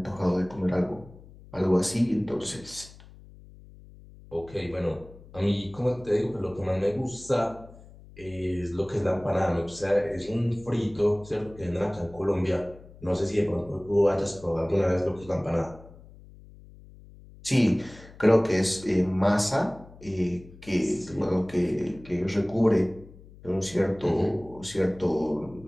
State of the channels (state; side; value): noise; left; hum, 21 dB below the sound